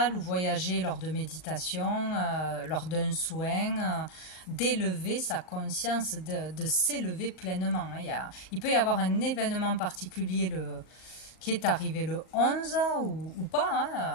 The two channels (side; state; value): right; late; 39 ms